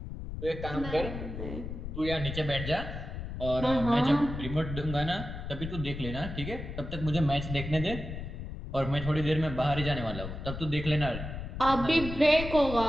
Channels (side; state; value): left; noise; rumble, 7 dB below the sound